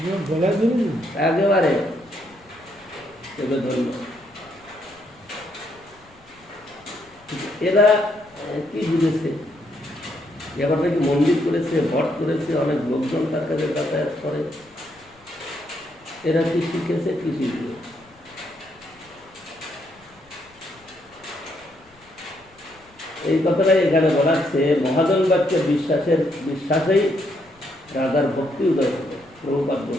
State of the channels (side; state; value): left; noise; rumble, 29 dB below the sound